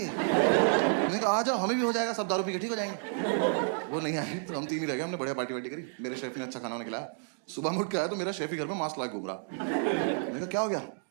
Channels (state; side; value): silent; left; digital silence